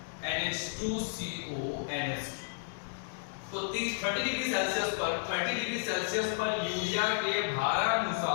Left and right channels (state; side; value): silent; right; digital silence